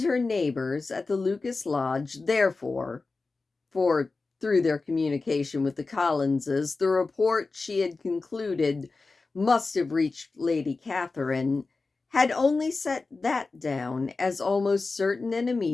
her neighbors at the Lucas Lodge, therefore, for through their communication with the Collinses, the report she had concluded must have reached Lady Catherine, had only set that down as almost certain and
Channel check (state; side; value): quieter; right; 3.8 dB